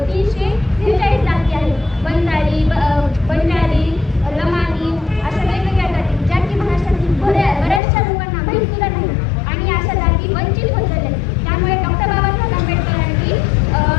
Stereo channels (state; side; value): drops out; right; at 7.8 s